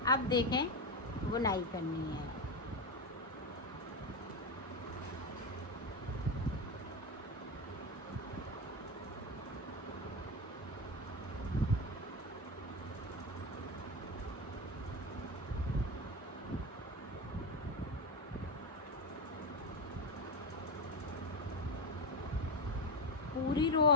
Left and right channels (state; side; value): normal; both; correlation 0.13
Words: अब देखें बुनाई करनी है। पूरी रो